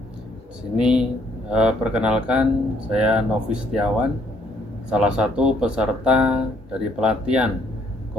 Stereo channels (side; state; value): both; normal; correlation 0.67